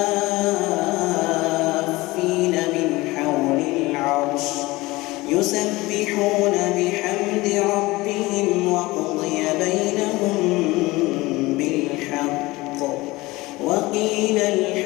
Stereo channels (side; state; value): right; quieter; 20.7 dB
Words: من حول العرش يسبحون بحمد ربهم وقضي بينهم بالحق وقيل